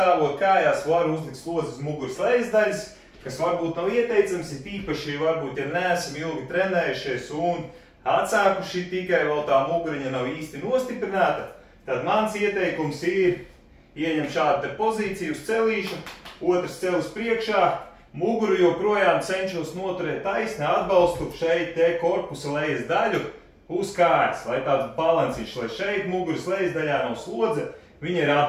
kājās var uzlikt slodzi uz muguras lejas daļas, kas varbūt nav ieteicams, ir īpaši varbūt, ja neesam ilgi trenējušies un atsākuši tikai vēl tā muguriņa nav īsti nostiprināta, tad mans ieteikums ir ieņem šādu te pozīciju uz celīšu, otrs celis priekšā, muguru joprojām cenšos noturēt taisni, atbalstu šeit te korpusa lejas daļu uz kājas, lai tāds balansīšs, lai šeit muguras lejas daļā nav slodze, viņa ir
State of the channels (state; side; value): identical; both; correlation 1.00